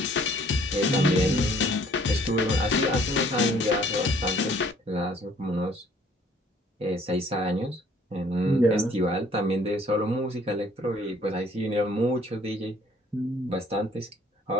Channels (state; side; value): normal; both; correlation 0.59